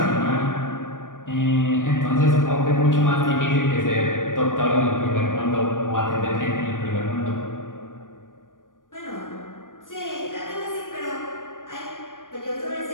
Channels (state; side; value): late; right; 0.88 ms